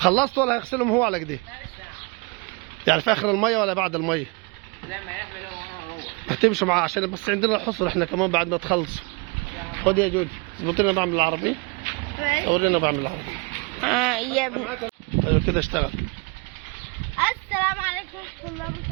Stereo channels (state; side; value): quieter; left; 29.4 dB